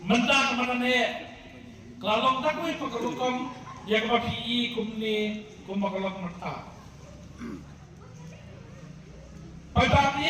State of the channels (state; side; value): identical; both; correlation 1.00